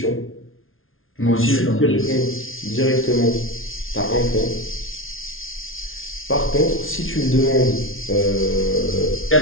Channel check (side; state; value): right; late; 0.60 ms